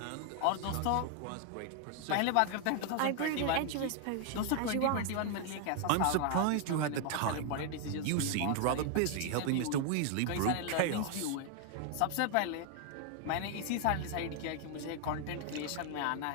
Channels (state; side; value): different; both; correlation 0.00